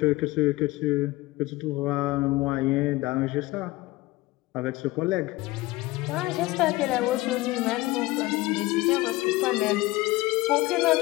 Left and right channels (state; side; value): quieter; right; 19.5 dB